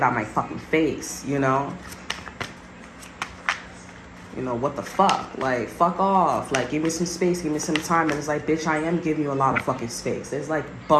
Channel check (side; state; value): both; identical; correlation 1.00